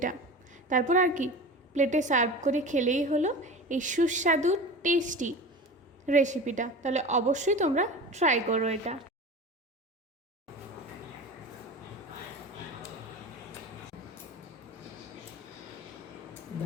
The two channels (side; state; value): both; normal; correlation 0.33